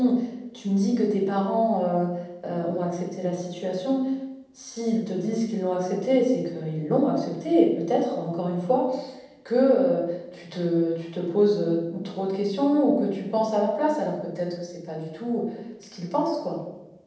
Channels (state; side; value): identical; both; correlation 1.00